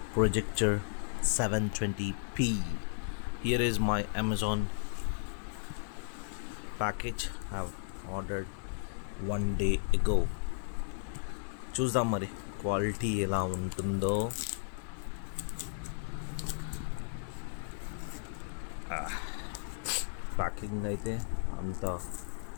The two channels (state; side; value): silent; right; digital silence